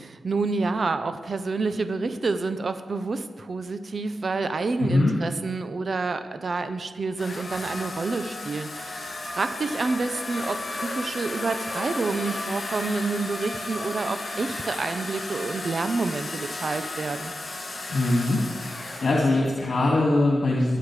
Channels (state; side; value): normal; both; correlation 0.89